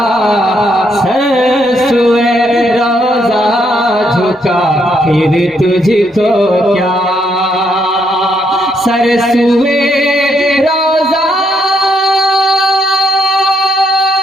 सरसुए रोजा झुका फिर तुझको क्या। सरसुए रोजा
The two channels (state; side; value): normal; both; correlation 0.75